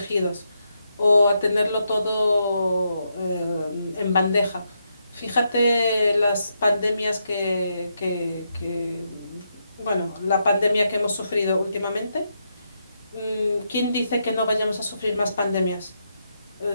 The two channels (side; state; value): both; inverted; correlation -0.81